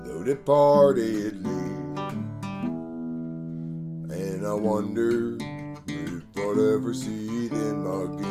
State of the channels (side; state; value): both; identical; correlation 1.00